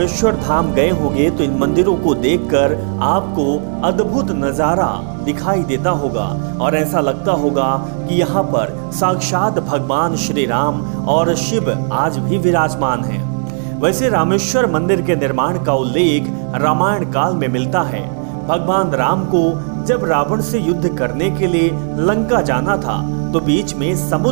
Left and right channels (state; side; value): silent; left; digital silence